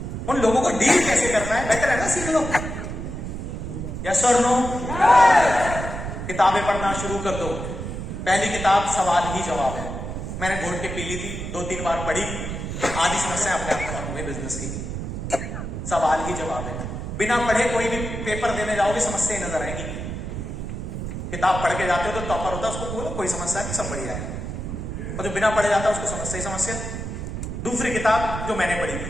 उन लोगों को डील कैसे करना है बेटर है ना, सीख लो। यस और नो? किताबें पढ़ना शुरू कर दो। पहली किताब सवाल ही जवाब है, मैंने घोट के पी ली थी, 2-3 बार पढ़ी, आधी समस्या अपने आप खत्म हो गई बिजनेस की। सवाल ही जवाब है, बिना पढ़े कोई भी पेपर देने जाओगे समस्या ही नजर आएगी। किताब पढ़ के जाते हो तो टॉपर होता है, उसको बोलो कोई समस्या नहीं, सब बढ़िया है, और जो बिना पढ़े जाता है उसको समस्या ही समस्या। दूसरी किताब जो मैंने पढ़ी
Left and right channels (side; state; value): right; noise; rumble, 6 dB below the sound